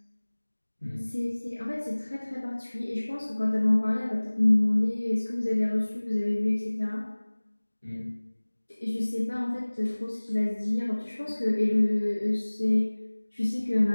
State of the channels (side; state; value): both; inverted; correlation -1.00